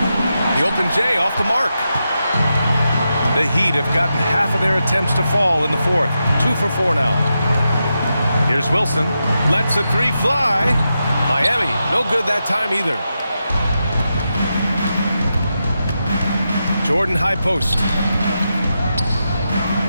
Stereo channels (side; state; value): both; inverted; correlation -0.87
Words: The open J off the mark. The Heat have gotten half of their attempts to fall in the fourth. 2 for 4 now. Here's Wilson. Lets a three fly. Miami, no good that time either. Jordan high post.